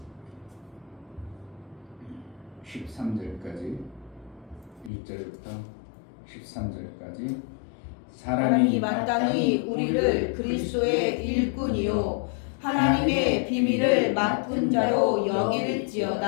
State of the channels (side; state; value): right; drops out; at 4.9 s